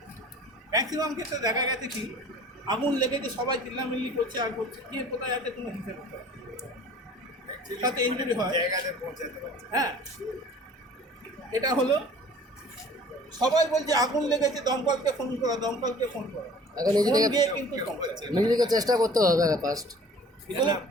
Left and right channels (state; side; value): normal; both; correlation 0.48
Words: ম্যাক্সিমাম ক্ষেত্রে দেখা গেছে কি, আগুন লেগেছে সবাই চিল্লামিল্লি করছে আর করছে, কে কোথায় আছে কোনো হিসেব করতে হবে, তাতে ইনজুরি হয়। হ্যাঁ, এটা হলো সবাই বলছে আগুন লেগেছে, দমকলকে ফোন করা, দমকলকে ফোন করা, এখন নিজে থেকে ফোন দিয়ে কিন্তু দমকল নিজে থেকে চেষ্টা করতে হবে ফার্স্ট।